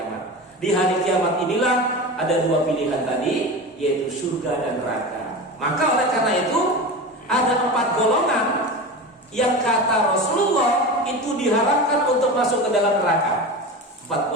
Di hari kiamat inilah ada 2 pilihan tadi, yaitu surga dan neraka. Maka oleh karena itu ada 4 golongan yang kata Rasulullah itu diharapkan untuk masuk ke dalam neraka. 4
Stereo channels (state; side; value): normal; both; correlation 0.28